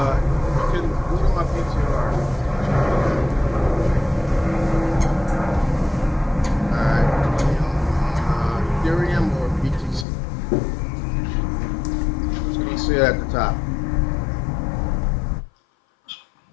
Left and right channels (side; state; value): right; drops out; at 10.1 s